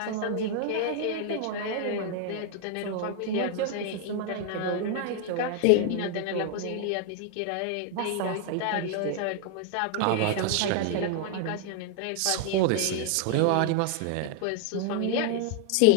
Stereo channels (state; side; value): different; both; correlation 0.00